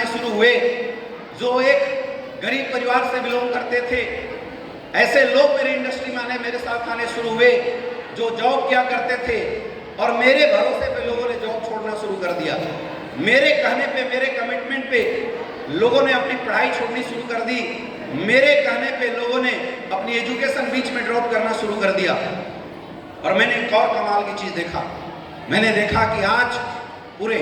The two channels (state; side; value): identical; both; correlation 1.00